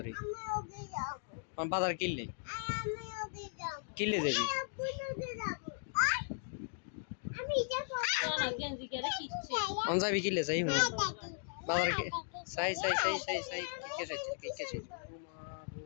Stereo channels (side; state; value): right; silent; digital silence